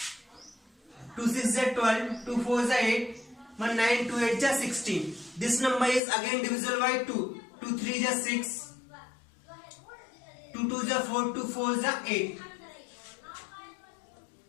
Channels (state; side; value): drops out; right; at 6.0 s